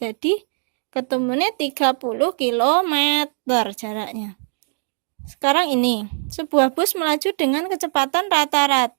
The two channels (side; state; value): left; silent; 65 dB below the other